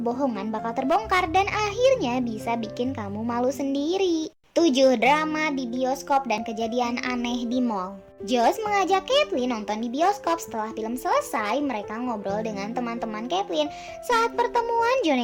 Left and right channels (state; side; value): identical; both; correlation 1.00